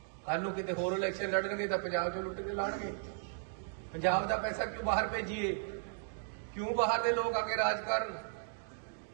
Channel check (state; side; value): silent; left; digital silence